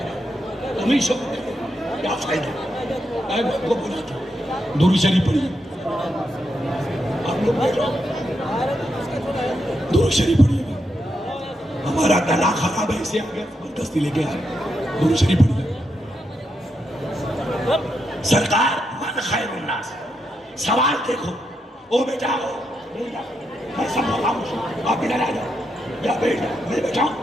گا، تم ہی شوق کرو کیا فائدہ؟ میں آپ کو بلاتا ہوں درود شریف پڑھیے، آپ لوگ بیٹھو درود شریف پڑھیے گا، ہمارا گلا خراب ہے اسے آگے زبردستی لے کے آئے، درود شریف پڑھیے۔ سرکار من خیر الناس، سوال دیکھو، او بیٹا ہو میں سب خاموش ہوں، آپ ادھر آ جاؤ یا بیٹھ جاؤ، میں بیٹھا ہوں۔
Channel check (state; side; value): normal; both; correlation 0.83